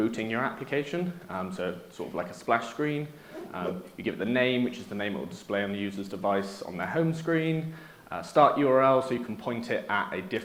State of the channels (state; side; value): identical; both; correlation 1.00